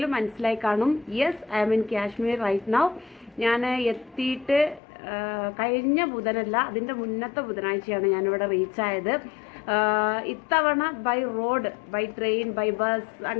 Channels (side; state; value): right; drops out; at 4.8 s